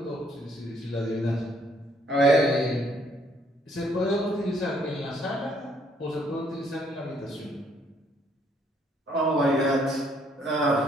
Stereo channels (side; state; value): both; normal; correlation 0.67